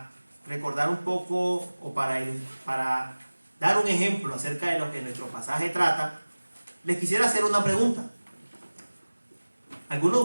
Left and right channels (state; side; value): inverted; both; correlation -1.00